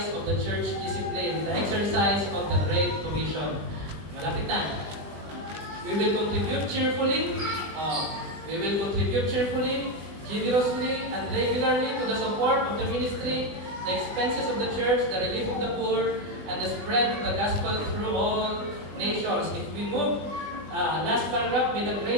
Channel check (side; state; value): left; late; 20 ms